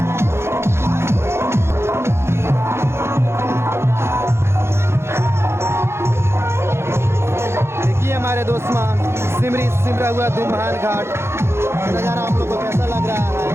देखिए हमारे दोस्मा सिमरी सिमरा हुआ दो महान घाट नज़ारा आप लोग को कैसा लग रहा है।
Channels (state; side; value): late; left; 0.12 ms